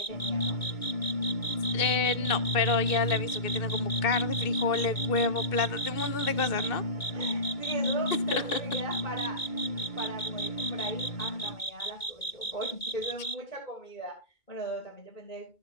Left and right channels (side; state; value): right; late; 2.2 ms